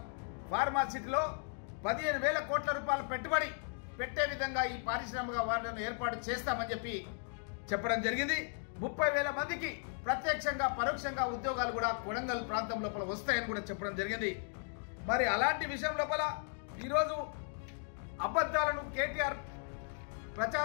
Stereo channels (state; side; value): silent; right; 54 dB below the other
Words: ఫార్మా సిటీలో 15,000 కోట్ల రూపాయల పెట్టుబడి పెట్టే విధంగా ఈ పారిశ్రామిక వాడను ఏర్పాటు చేస్తామని చెప్పి చెప్పడం జరిగింది. 30,000 మందికి ప్రత్యక్షంగా పరోక్షంగా ఉద్యోగాలు కూడా కొడంగల్ ప్రాంతం లోపల వస్తాయని కూడా చెప్పడం జరిగింది. మరి అలాంటి విషయం లోపల ఈరోజు అబద్ధాలను కేటీఆర్